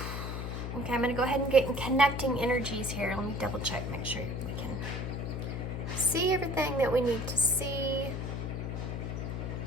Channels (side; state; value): left; noise; hum, 4 dB below the sound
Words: Okay, I'm going to go ahead and get in connecting energies here. Let me double check, make sure we can see everything that we need to see.